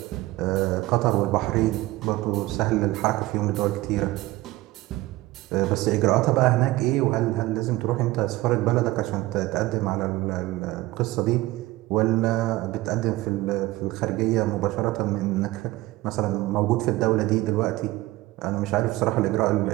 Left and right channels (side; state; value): left; quieter; 18.5 dB